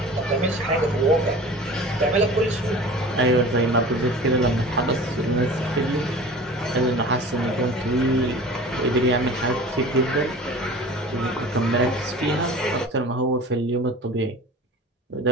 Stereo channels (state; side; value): normal; both; correlation 0.40